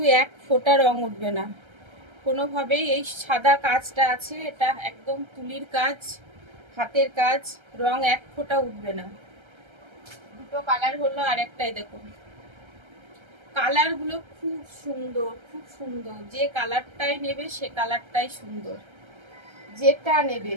এক ফোঁটা রং উঠবে না কোনোভাবেই। এই সাদা কাজটা আছে, এটা একদম তুলির কাজ, হাতের কাজ, রং এক ফোঁটা উঠবে না। দুটো কালার হলো, আর একটাই দেখুন। কালারগুলো খুব সুন্দর, খুব সুন্দর। যে কালারটাই নেবে সে কালারটাই সুন্দর, যেটা নেবে।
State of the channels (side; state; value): left; late; 1.3 ms